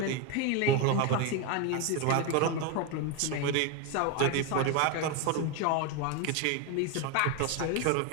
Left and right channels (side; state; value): both; different; correlation 0.02